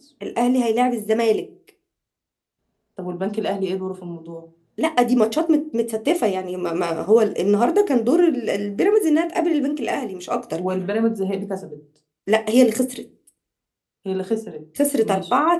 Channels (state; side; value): identical; both; correlation 1.00